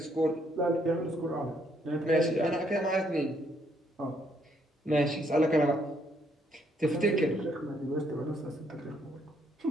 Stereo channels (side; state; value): both; normal; correlation 0.71